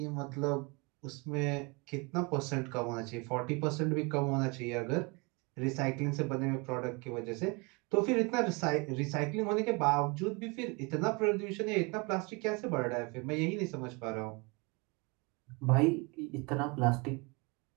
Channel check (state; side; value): quieter; left; 28.8 dB